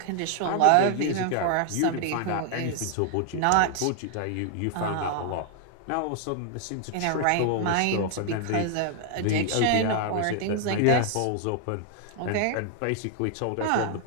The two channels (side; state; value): both; different; correlation 0.00